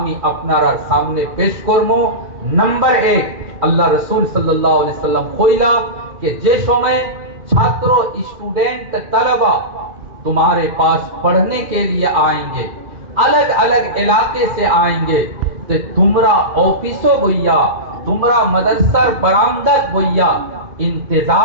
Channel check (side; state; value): left; late; 2.1 ms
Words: আপনার সামনে পেশ করব। নাম্বার 1, আল্লাহ রাসূল সাল্লাল্লাহু আলাইহি সাল্লাম কইলা যে যে সময় ছাত্র, স্টুডেন্ট, তালেবা तुम्हारे पास पढ़ने के लिए आएंगे, अलग अलग इलाके से आएंगे, तो तुमरा ऑफिसो भैया, तुमरा मदरसर बरामदत भैया